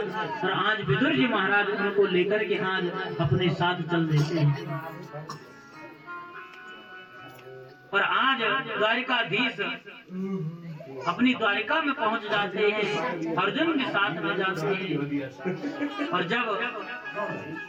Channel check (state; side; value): identical; both; correlation 1.00